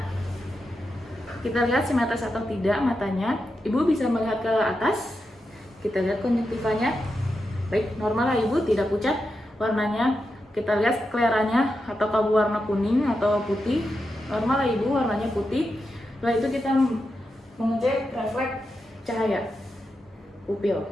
Kita lihat simetris atau tidak matanya. Ibu bisa melihat ke atas. Kita lihat konjungtivanya. Baik, normal lah ibu, tidak pucat warnanya. Kita lihat skleranya, atau kabut warna kuning atau putih. Normal lah ibu, warnanya putih. Setelah itu kita mengecek refleks cahaya pupil.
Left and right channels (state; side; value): normal; both; correlation 0.87